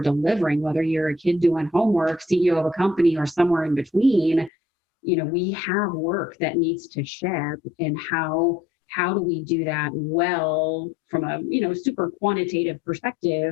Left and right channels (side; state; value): right; drops out; at 4.5 s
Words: whether you're a kid doing homework, CEO of a company, or somewhere in between. You know, we have work that needs to ship, and how do we do that well from a, super quantitative